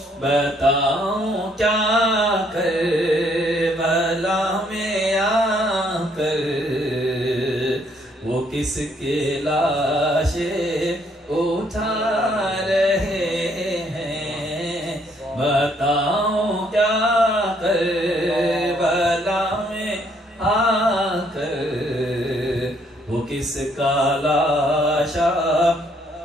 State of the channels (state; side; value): normal; both; correlation 0.68